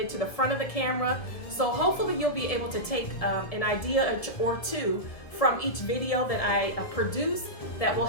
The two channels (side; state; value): right; late; 2.0 ms